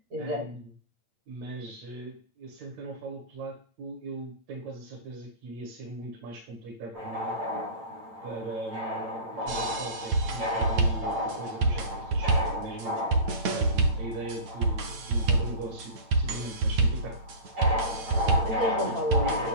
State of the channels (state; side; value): late; left; 8.9 ms